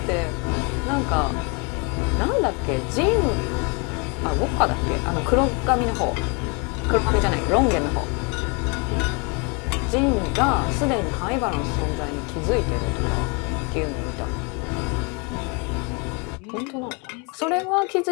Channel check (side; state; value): right; quieter; 32.4 dB